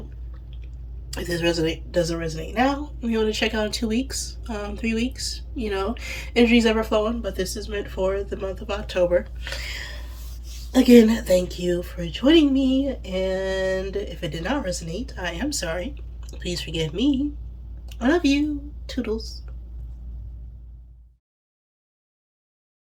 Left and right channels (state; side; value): identical; both; correlation 1.00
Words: if this doesn't resonate now, you want to check out in 2 weeks, 3 weeks. Energy's ever flowing, but this is meant for the month of October. Again, thank you for joining me, and if it did not resonate, I am sorry. Please forgive me. I love you. Toodles.